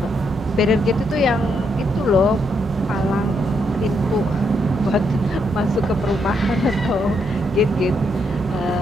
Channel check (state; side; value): normal; both; correlation 0.77